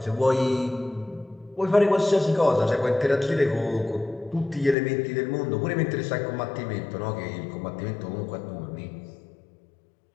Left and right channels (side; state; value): right; drops out; at 4.8 s